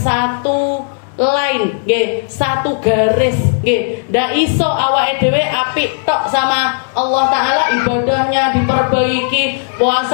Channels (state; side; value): silent; right; digital silence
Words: line, satu garis. Ndak iso awake dhewe apik tok sama Allah Ta'ala, ibadahnya diperbaiki,